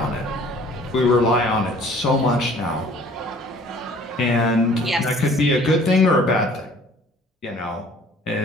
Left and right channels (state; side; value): normal; both; correlation 0.53